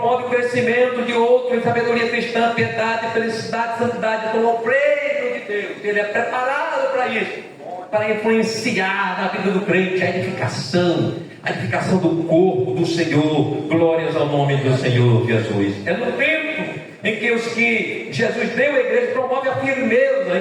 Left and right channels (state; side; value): identical; both; correlation 1.00